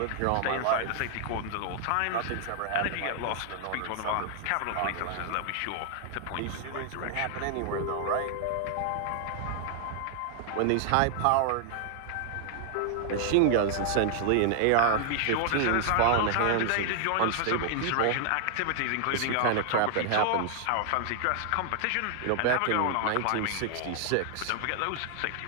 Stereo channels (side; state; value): both; different; correlation 0.00